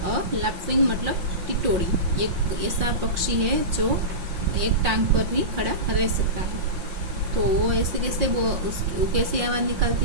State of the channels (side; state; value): left; late; 5.6 ms